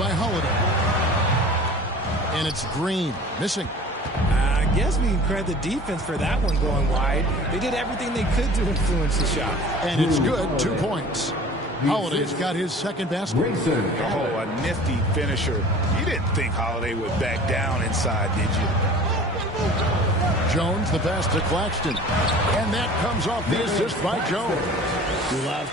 Holiday. And it's Green, missing. guess we can credit the defense for that one going wide. They did everything they could to influence the shot. And it's good, 2 points. Holiday's got his second basket. Oh, a nifty finisher. You didn't think Holiday would back down inside, did you? Jones, the pass to Claxton. And that comes off the assist by Jones. Love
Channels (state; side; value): normal; both; correlation 0.43